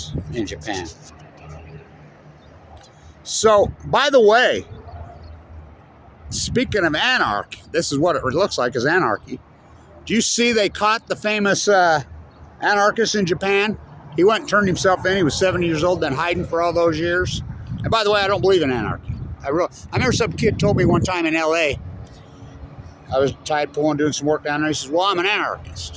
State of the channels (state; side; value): identical; both; correlation 1.00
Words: in Japan. So, by the way, speaking of anarchy, this is what it looks like as anarchy. Do you see they caught the famous anarchist in Japan? He went and turned himself in. He was 70 years old, then hiding for all those years. And by the way, I don't believe in anarchy. I remember some kid told me one time in L.A., I was tide pooling, doing some work down there. He says, well, I'm an